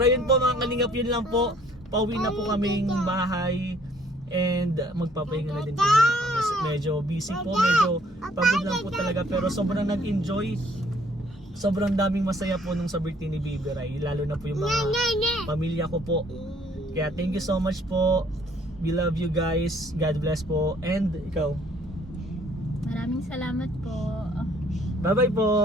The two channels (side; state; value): both; normal; correlation 0.61